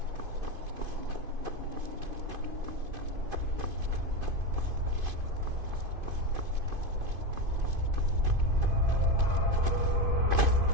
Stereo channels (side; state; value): left; late; 2.5 ms